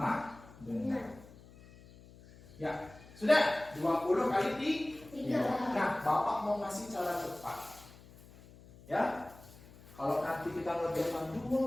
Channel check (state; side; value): noise; left; hum, 21 dB below the sound